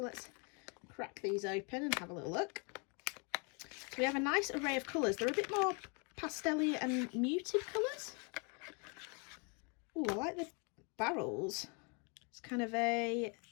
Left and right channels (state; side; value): quieter; right; 34.4 dB